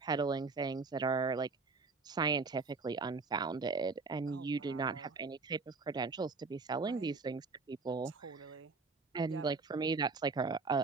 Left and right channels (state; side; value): quieter; left; 4.2 dB